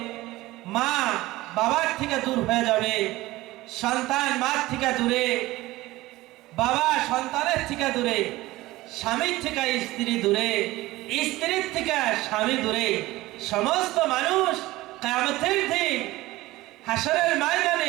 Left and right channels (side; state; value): left; quieter; 18.4 dB